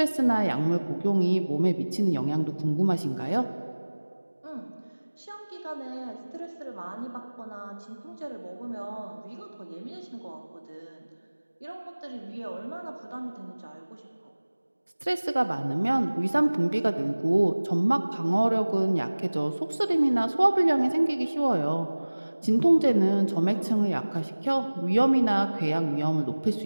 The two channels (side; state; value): both; inverted; correlation -1.00